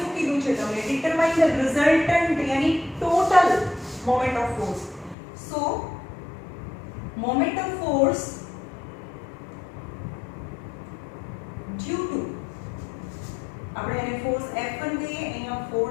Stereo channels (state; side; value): drops out; right; at 5.2 s